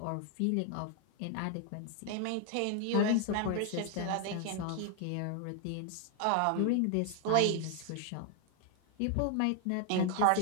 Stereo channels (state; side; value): different; both; correlation 0.00